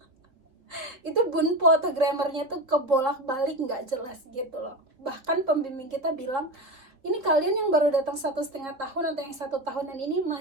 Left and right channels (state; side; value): late; left; 3.7 ms